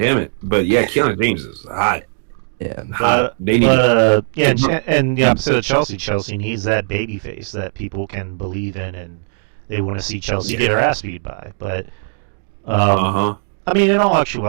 it. But yeah, Kiana James is hot. Yeah. And the opposite of Chelsea needs that baby face that people can believe in, and they want to see Chelsea get her ass beat by. But I mean, in all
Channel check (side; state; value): left; silent; digital silence